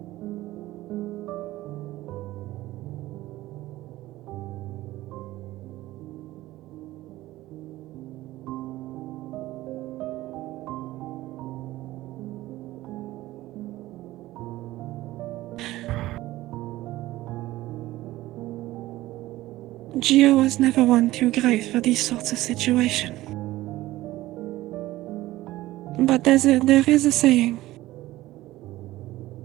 Gio was never one too great for these sorts of situations. But there is a saying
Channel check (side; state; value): left; quieter; 16.7 dB